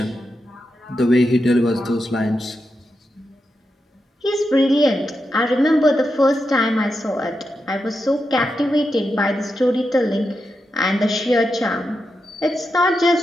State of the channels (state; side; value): normal; both; correlation 0.87